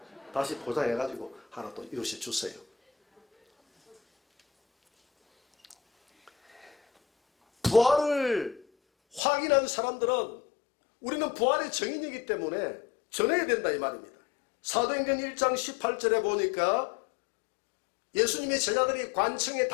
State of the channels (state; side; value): drops out; right; at 9.2 s